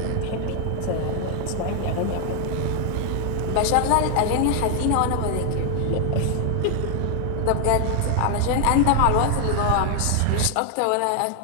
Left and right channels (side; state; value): both; different; correlation 0.00